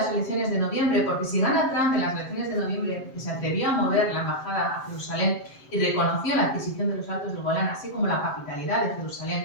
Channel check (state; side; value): late; right; 7.6 ms